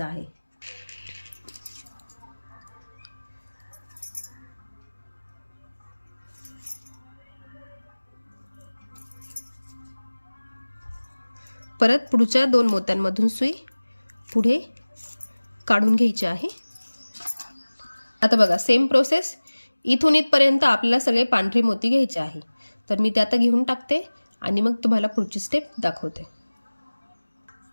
आहे. परत पुढच्या 2 मोत्यांमधून सुई पुढे काढून घ्यायची आहे. आता बघा सेम प्रोसेस, इथून इथपर्यंत आपल्याला सगळे पांढरे मोती घ्यायचे आहे. तर मी ते आता घेऊन टाकते आणि मग तुम्हाला पुढची स्टेप दाखवते.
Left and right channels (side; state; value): both; inverted; correlation -1.00